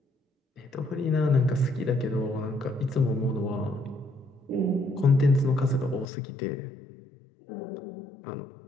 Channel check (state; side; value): drops out; right; at 6.1 s